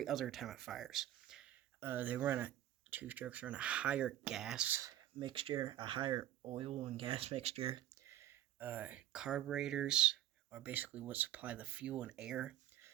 other time it fires. They run a 2 strokes run a higher gas mixture, a higher oil and gas mixture. Carburetors are basically what supply the fuel and air.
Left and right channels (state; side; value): quieter; left; 12.7 dB